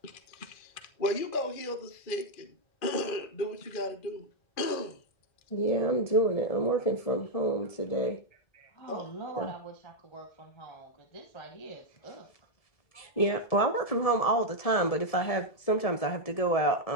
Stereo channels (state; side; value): late; right; 1.7 ms